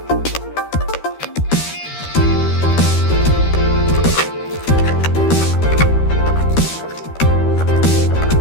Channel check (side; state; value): right; late; 13 ms